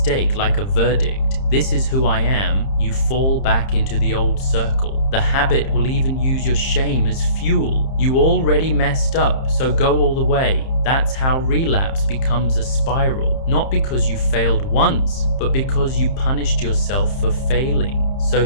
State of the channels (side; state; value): right; late; 30 ms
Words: like a verdict, this is who I am, you fall back into the old circle. The habit will even use your shame as fuel. You already messed up, so go all the way. That's how relapse becomes a spiral. Not because you failed once, but because you punished yourself for failing. So